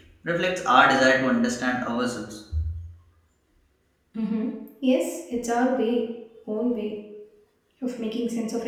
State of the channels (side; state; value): both; identical; correlation 1.00